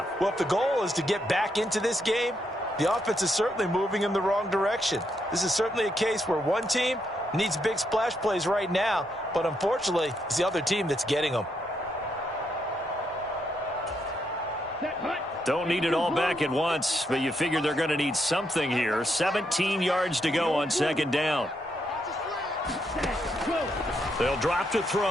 Well, if the goal is to get back into this game, the offense is certainly moving in the wrong direction. This is certainly a case where one team needs big splash plays right now, but unfortunately, it's the other team that's getting them. Don't need it all back at once, but you figure they're going to need something here. 17 yards to go on 2nd down. They'll drop to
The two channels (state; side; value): normal; both; correlation 0.78